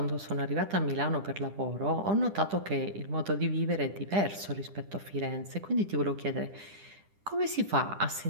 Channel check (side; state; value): left; late; 10 ms